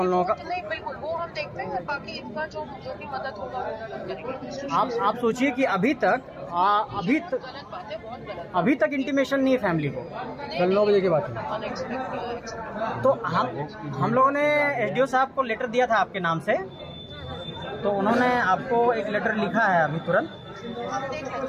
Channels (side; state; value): both; identical; correlation 1.00